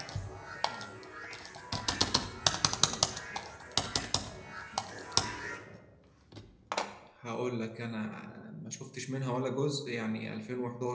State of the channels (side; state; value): both; identical; correlation 1.00